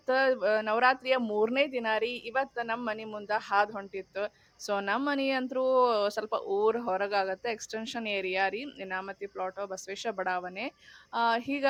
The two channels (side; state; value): both; identical; correlation 1.00